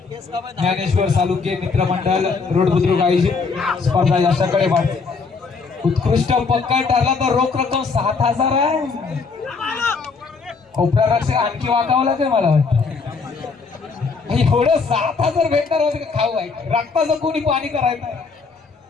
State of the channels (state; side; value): quieter; right; 4.7 dB